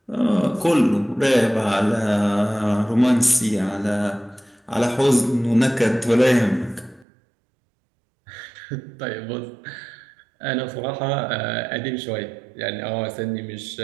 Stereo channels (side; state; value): left; drops out; at 7.1 s